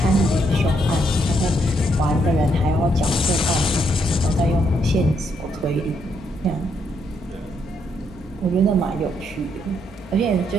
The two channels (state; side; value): normal; both; correlation 0.75